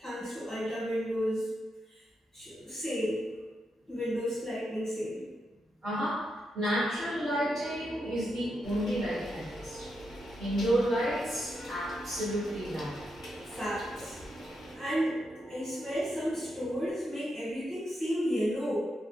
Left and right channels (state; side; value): normal; both; correlation 0.84